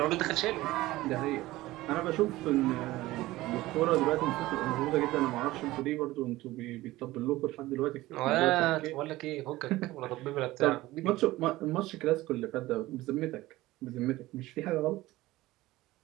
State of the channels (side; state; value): left; quieter; 17.8 dB